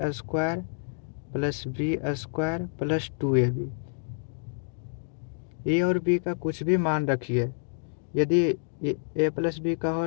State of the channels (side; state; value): right; silent; digital silence